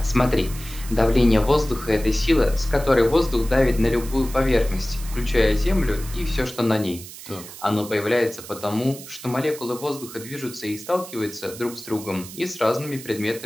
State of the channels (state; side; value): noise; right; hiss, 14 dB below the sound